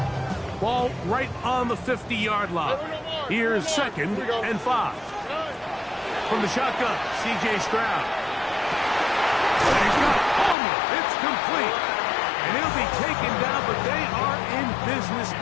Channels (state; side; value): drops out; right; at 10.6 s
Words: Ball right on the 50-yard line. Here's 2nd and 5. From the shotgun, C.J. Stroud. And he's got Palmer. It's complete. And he'll be taken down, but they are in business